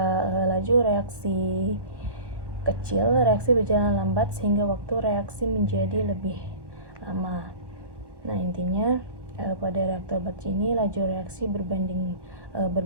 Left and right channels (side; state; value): left; late; 1.1 ms